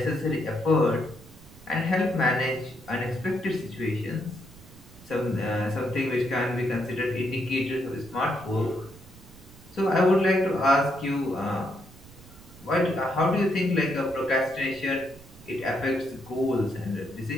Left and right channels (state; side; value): noise; right; rumble, 21 dB below the sound